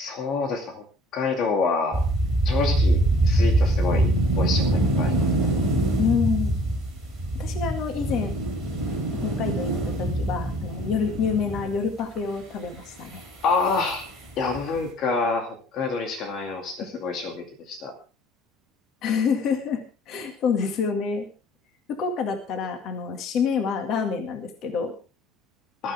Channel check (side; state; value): both; normal; correlation 0.54